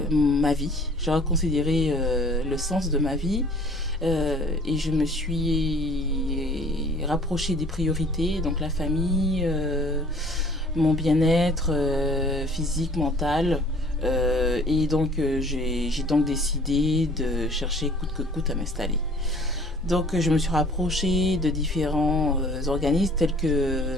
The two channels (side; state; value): both; normal; correlation 0.53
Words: ma vie, j'ai reconsidéré le sens de ma vie et je me suis rapprochée des priorités, donc la famille, mon bien-être physique, mental. Et donc j'ai donc décidé de chercher coûte que coûte à m'installer. Donc je me suis rapprochée de différents organismes tels